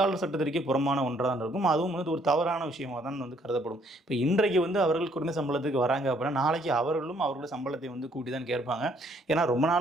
சட்டத்திற்கே புறமான ஒன்றாக தான் இருக்கும். அதுவும் வந்து ஒரு தவறான விஷயமாக தான் வந்து கருதப்படும். இப்போ இன்றைக்கு வந்து அவர்கள் குறைந்த சம்பளத்துக்கு வராங்க அப்படின்னா நாளைக்கு அவர்களும் அவர்களுடைய சம்பளத்தை வந்து கூட்டி தான் கேட்பாங்க. ஏன்னா ரொம்ப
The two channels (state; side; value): normal; both; correlation 0.66